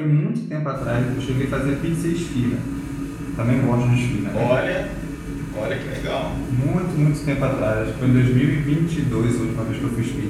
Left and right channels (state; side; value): identical; both; correlation 1.00